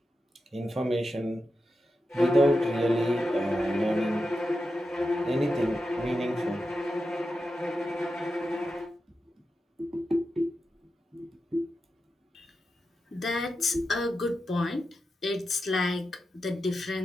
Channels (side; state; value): both; normal; correlation 0.89